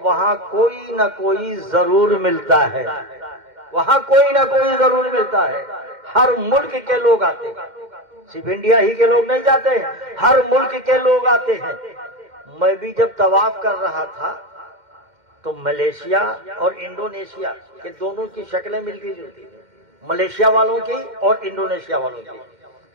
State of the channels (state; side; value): late; left; 2.1 ms